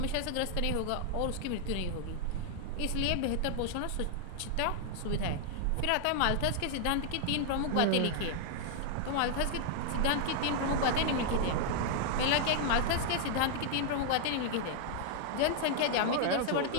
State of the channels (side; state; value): both; different; correlation 0.00